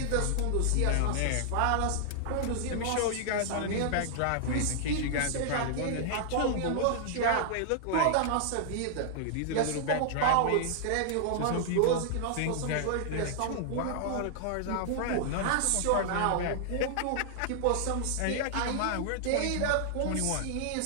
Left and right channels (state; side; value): different; both; correlation -0.01